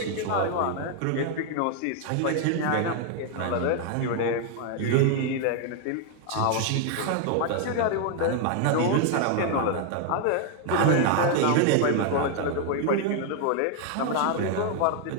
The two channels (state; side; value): different; both; correlation 0.00